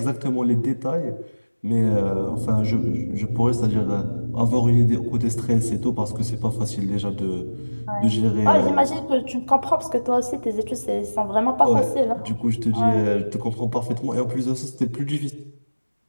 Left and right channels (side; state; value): both; inverted; correlation -1.00